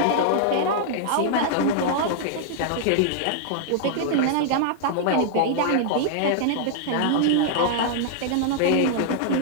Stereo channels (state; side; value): different; both; correlation -0.01